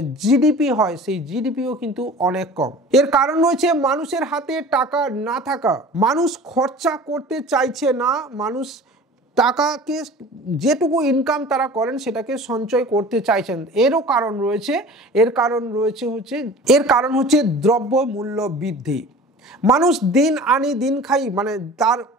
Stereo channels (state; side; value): normal; both; correlation 0.41